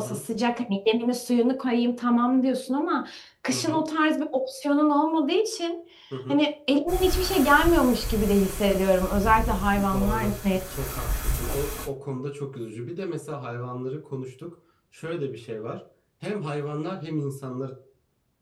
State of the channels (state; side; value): identical; both; correlation 1.00